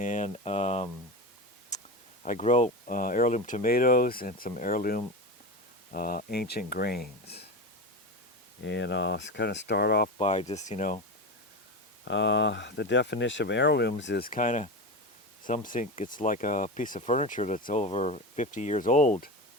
I grow heirloom tomatoes and some heirloom ancient grains. And I'll kind of start off by just, the definition of heirlooms is kind of, some think it's like a piece of furniture that's over 50 years old.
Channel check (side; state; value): both; normal; correlation 0.23